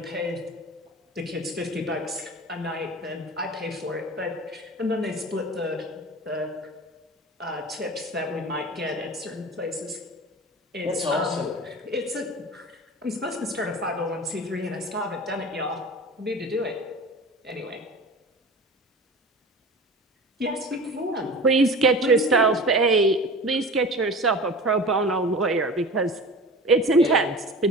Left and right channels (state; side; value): normal; both; correlation 0.36